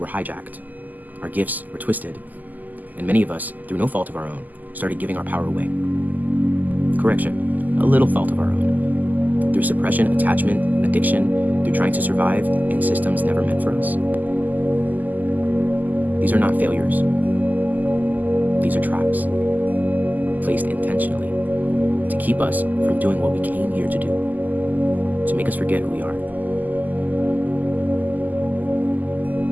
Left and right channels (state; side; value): late; left; 0.083 ms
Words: hijacked. Our gifts were twisted, and many of us, through no fault of our own, started giving our power away. Correction, a little fault of our own. Through suppression, attachment, addiction, through trying to survive in systems never meant for us. These are not failures. These are traps, placed intentionally to keep us from doing what we came here to do, to make us forget who we are.